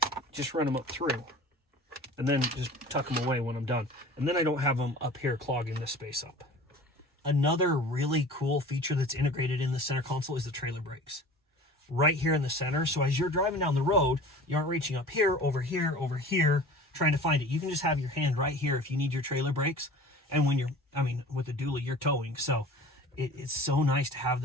just run them up through and then just tuck them away when I'm done. And then I don't have them up here clogging this space up. Another really cool feature that's integrated in the center console is the trailer brakes. Right here in the center. So as you're driving down the road, you aren't reaching up here, over here, trying to find it. You can just have your hand right here if you need your trailer brakes. And when with the dually, you're towing. So it's so nice to have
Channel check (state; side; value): normal; both; correlation 0.41